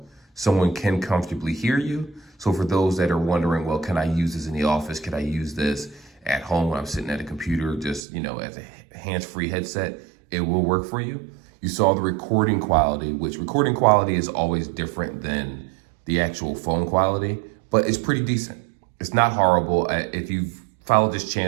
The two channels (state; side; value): drops out; left; at 8.0 s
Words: someone can comfortably hear you. So for those that are wondering, well, can I use this in the office? Can I use this at home when I'm sitting at a computer, just, as a hands-free headset? It will work for you. You saw the recording quality, which recording quality is always different than the actual phone quality, but it's pretty decent. It's not horrible. If you've followed this